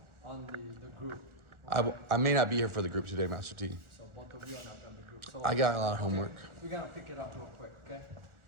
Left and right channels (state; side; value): late; left; 1.4 ms